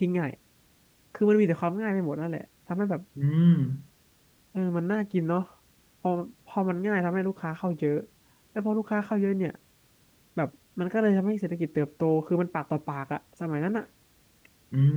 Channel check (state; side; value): identical; both; correlation 1.00